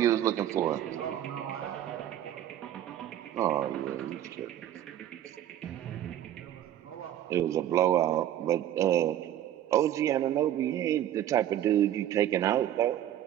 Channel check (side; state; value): left; quieter; 11.7 dB